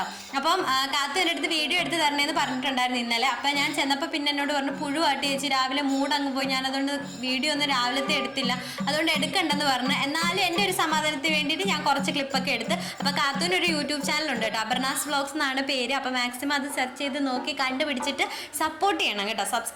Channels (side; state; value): both; identical; correlation 1.00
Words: അപ്പം കാത്തു എൻ്റെ അടുത്ത് വീഡിയോ എടുത്ത് തരണേന്ന് പറഞ്ഞിട്ടുണ്ടായിരുന്നു ഇന്നലെ. അപ്പം ഞാൻ ചെന്നപ്പോൾ പിന്നെ എന്നോട് പറഞ്ഞു പുഴുവാട്ടി ചേച്ചി രാവിലെ മൂടങ്ങ് പോയി, ഞാൻ അതുകൊണ്ട് വീഡിയോ ഒന്നും രാവിലത്തെ എടുത്തില്ല, അതുകൊണ്ട് എടുക്കണ്ടെന്ന് പറഞ്ഞു. എന്നാലും എൻ്റെ ഒരു സമാധാനത്തിന് വേണ്ടിയിട്ട് ഞാൻ കുറച്ച് ക്ലിപ്പൊക്കെ എടുത്ത്. അപ്പോൾ കാത്തൂൻ്റെ ഒരു യൂട്യൂബ് ചാനലുണ്ട് കേട്ടോ, അപർണാസ് വ്ലോഗ്സ് എന്നാണ് പേര്. അപ്പോൾ മാക്സിമം അത് സെർച്ച് ചെയ്ത് നോക്കി കണ്ടുപിടിച്ചിട്ട് സപ്പോർട്ട് ചെയ്യണം കേട്ടോ,